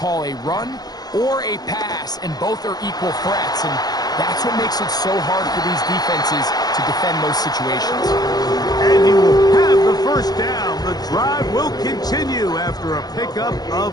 a run or a pass, and both are equal threats. And that's what makes it so hard for these defenses to defend those situations. And he will have the first down. The drive will continue after a pickup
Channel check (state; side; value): late; right; 0.19 ms